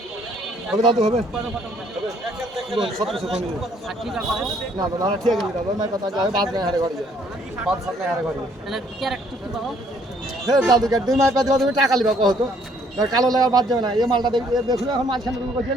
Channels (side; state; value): both; normal; correlation 0.65